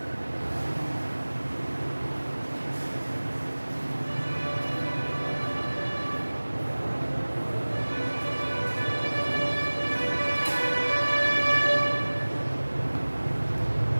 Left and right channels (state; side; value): inverted; both; correlation -1.00